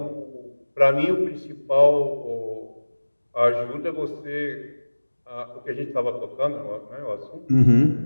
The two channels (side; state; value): both; inverted; correlation -1.00